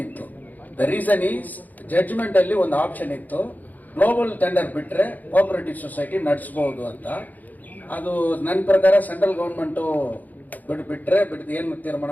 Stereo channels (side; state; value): right; late; 0.082 ms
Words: ಇತ್ತು. ದ ರೀಸನ್ ಈಸ್ ಜಡ್ಜ್ಮೆಂಟ್ ಅಲ್ಲಿ ಒಂದು ಆಪ್ಷನ್ ಇತ್ತು, ಗ್ಲೋಬಲ್ ಟೆಂಡರ್ ಬಿಟ್ರೆ ಕೋಆಪರೇಟಿವ್ ಸೊಸೈಟಿ ನಡೆಸಬಹುದು ಅಂತ. ಅದು ನನ್ನ ಪ್ರಕಾರ ಸೆಂಟ್ರಲ್ ಗೌರ್ಮೆಂಟು ಬಿಟ್ರೆ ಏನು ತೀರ್ಮಾನ